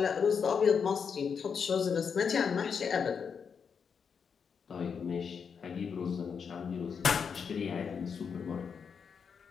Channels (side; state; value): right; quieter; 6.4 dB